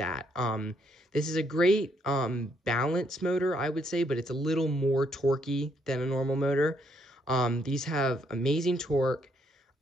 This is a great balance motor, I would say, but it's a little more torquey than a normal motor. These have amazing torque,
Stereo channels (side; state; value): both; normal; correlation 0.72